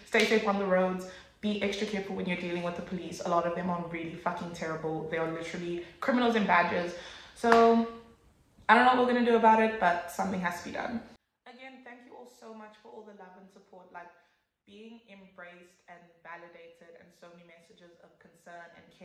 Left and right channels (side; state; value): both; identical; correlation 1.00